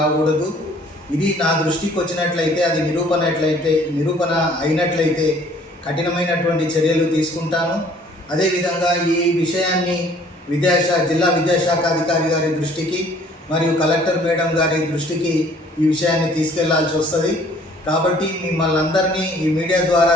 ఇది నా దృష్టికి వచ్చినట్లయితే, అది నిరూపణ అయినట్లయితే కఠినమైనటువంటి చర్యలు తీసుకుంటాను. అదేవిధంగా ఈ విషయాన్ని జిల్లా విద్యాశాఖ అధికారి గారి దృష్టికి మరియు కలెక్టర్ మేడం గారి దృష్టికి ఈ విషయాన్ని తీసుకెళ్లాల్సి వస్తుంది. కాబట్టి మిమ్మల్ని అందరినీ ఈ మీడియా ద్వారా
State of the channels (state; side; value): normal; both; correlation 0.57